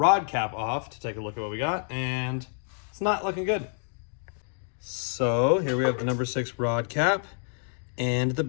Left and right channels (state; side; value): silent; right; 59 dB below the other